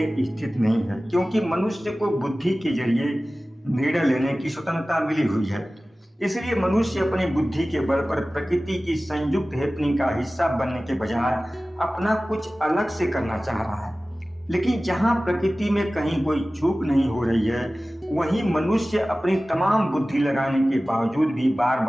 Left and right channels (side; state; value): both; normal; correlation 0.97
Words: स्थित नहीं है, क्योंकि मनुष्य को बुद्धि के जरिए निर्णय लेने की स्वतंत्रता मिली हुई है। इसलिए मनुष्य अपनी बुद्धि के बल पर प्रकृति की संयुक्त हैपनिंग का हिस्सा बनने के बजाय अपना कुछ अलग से करना चाह रहा है। लेकिन जहां प्रकृति में कहीं कोई चूक नहीं हो रही है, वहीं मनुष्य अपनी तमाम बुद्धि लगाने के बावजूद भी बार